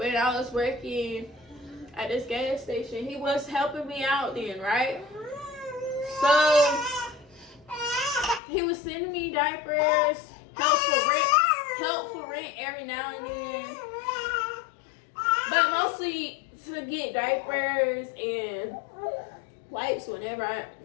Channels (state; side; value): drops out; right; at 8.4 s